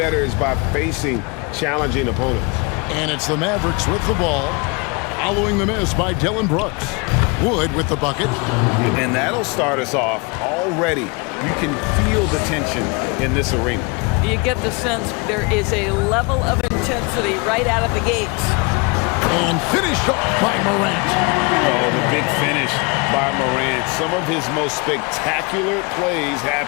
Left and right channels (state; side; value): quieter; right; 29.6 dB